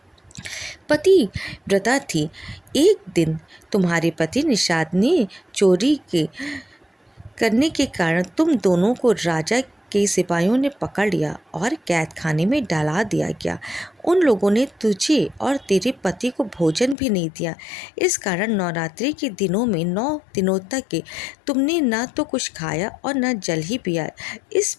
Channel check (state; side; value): drops out; right; at 16.9 s